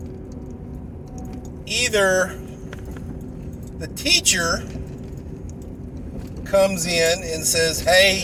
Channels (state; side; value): identical; both; correlation 1.00